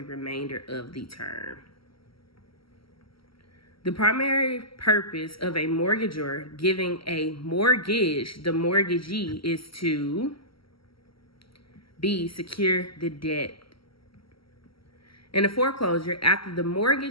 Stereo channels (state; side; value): late; right; 0.75 ms